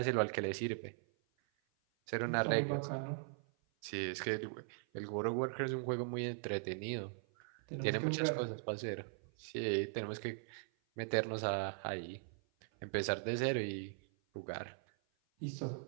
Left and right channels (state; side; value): silent; left; 51 dB below the other